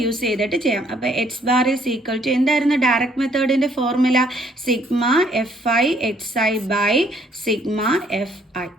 യൂസ് ചെയ്തിട്ട് ചെയ്യാം. അപ്പോൾ X bar is equal to എന്തായിരുന്നു ഡയറക്റ്റ് മെത്തേഡിൻ്റെ formula? Sigma FI/XI by sigma FI.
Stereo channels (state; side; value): normal; both; correlation 0.65